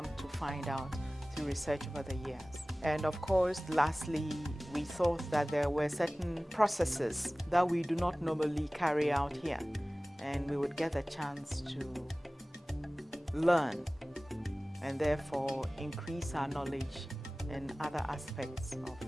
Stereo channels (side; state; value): both; normal; correlation 0.98